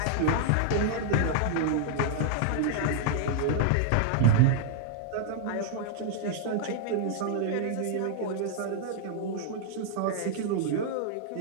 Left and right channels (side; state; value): both; different; correlation -0.01